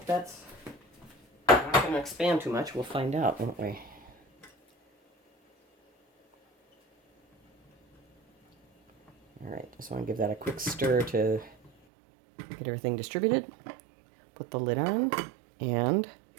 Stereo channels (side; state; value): left; drops out; at 11.7 s